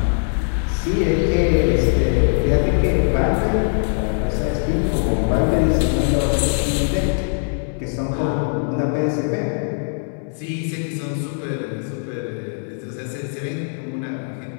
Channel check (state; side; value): silent; right; 65 dB below the other